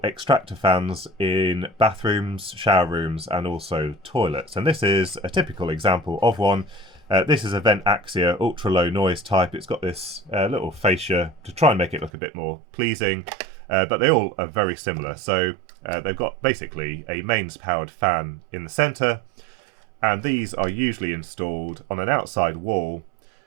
extractor fans in bathrooms, shower rooms, and also toilets. And this is a typical example of one. This is a Vent Axia ultra low noise type. It's got this little fascia to try and make it look a bit more pleasing, but they all are very similar. So they've got basically a mains powered fan in the centre, and these are usually installed on an outside wall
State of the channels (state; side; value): drops out; left; at 12.1 s